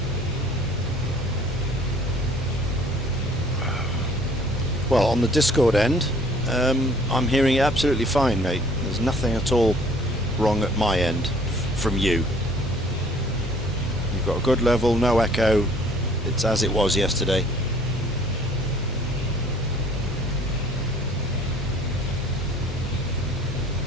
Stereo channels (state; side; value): normal; both; correlation 0.55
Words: Well, on the Discord end, I'm hearing it absolutely fine, mate. There's nothing at all wrong at my end from you. You've got a good level, no echo. It's as it was yesterday.